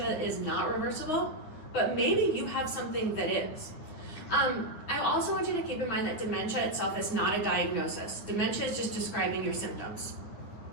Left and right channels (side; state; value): right; late; 9.6 ms